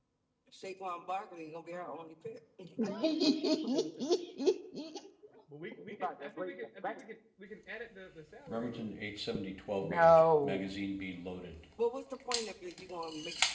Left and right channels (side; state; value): both; identical; correlation 1.00